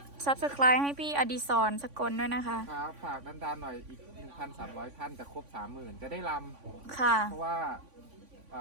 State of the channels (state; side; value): late; left; 3.5 ms